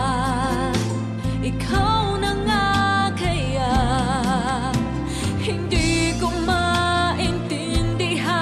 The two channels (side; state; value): both; identical; correlation 1.00